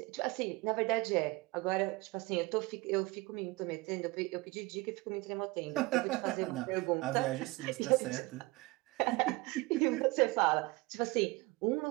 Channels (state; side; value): quieter; left; 23.3 dB